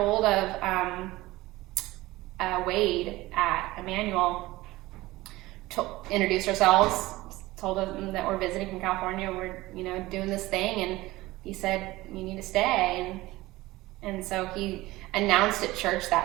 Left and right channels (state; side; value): quieter; left; 18.8 dB